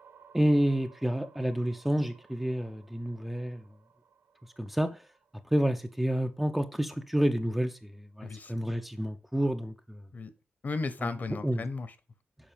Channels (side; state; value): both; normal; correlation 0.97